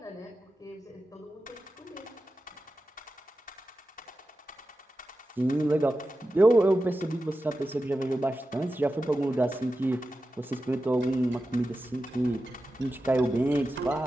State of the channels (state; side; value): normal; both; correlation 0.92